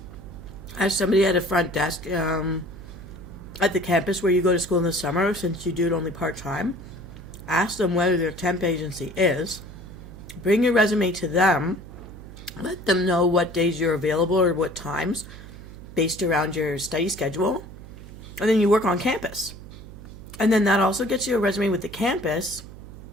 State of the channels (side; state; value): right; noise; hum, 15 dB below the sound